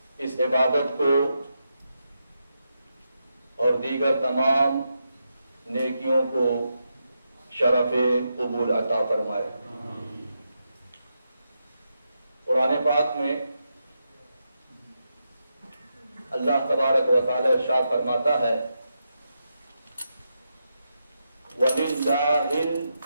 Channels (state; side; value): inverted; both; correlation -0.85